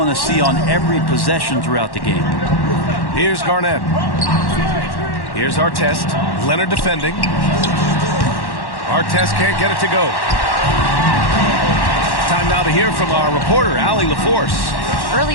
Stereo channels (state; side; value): late; right; 1.1 ms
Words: to see on every possession throughout the game. Here's Garnett. Here's Artest. Leonard defending. Artest can't get it to go. Time now to hear from our reporter, Allie LaForce.